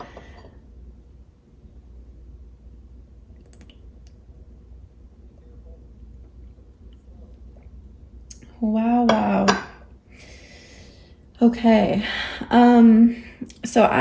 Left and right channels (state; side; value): identical; both; correlation 1.00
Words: Wow, wow. Okay. So